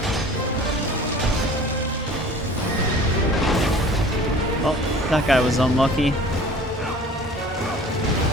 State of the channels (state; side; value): normal; both; correlation 0.45